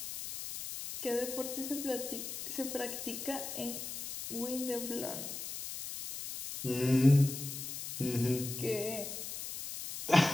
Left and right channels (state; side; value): noise; left; hiss, 7 dB below the sound